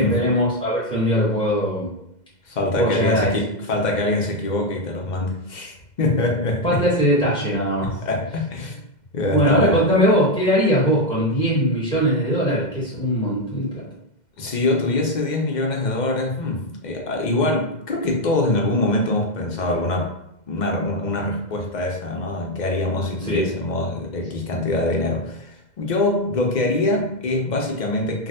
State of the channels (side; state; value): right; late; 2.1 ms